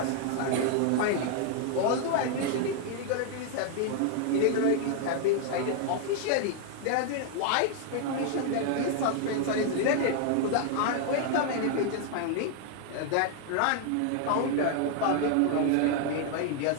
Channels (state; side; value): different; both; correlation 0.00